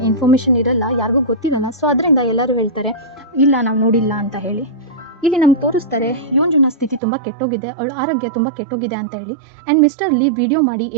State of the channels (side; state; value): left; drops out; at 7.0 s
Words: ಇನ್ಫಾರ್ಮೇಷನ್ ಇರಲ್ಲ, ಯಾರಿಗೂ ಗೊತ್ತಿರಲ್ಲ. ಸೊ ಅದರಿಂದ ಎಲ್ಲರೂ ಹೇಳ್ತಾರೆ ಇಲ್ಲ ನಾವು ನೋಡಿಲ್ಲ ಅಂತ ಹೇಳಿ. ಇಲ್ಲಿ ನಮ್ಗೆ ತೋರಿಸ್ತಾರೆ ಯೋಂಜುನ ಸ್ಥಿತಿ ತುಂಬ ಕೆಟ್ಟೋಗಿದೆ, ಅವಳ ಆರೋಗ್ಯ ತುಂಬ ಕೆಟ್ಟೋಗಿದೆ ಅಂತ ಹೇಳಿ. ಆ್ಯಂಡ್ ಮಿಸ್ಟರ್ ಲೀ ವಿಡಿಯೋ ಮಾಡಿ